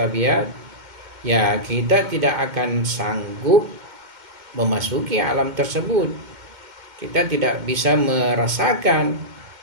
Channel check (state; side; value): late; left; 2.1 ms